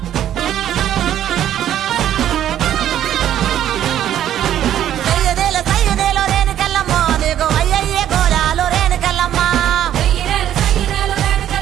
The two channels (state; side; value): quieter; left; 11.2 dB